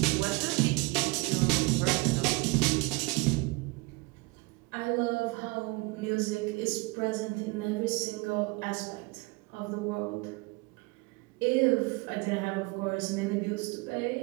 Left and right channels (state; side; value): quieter; left; 25.6 dB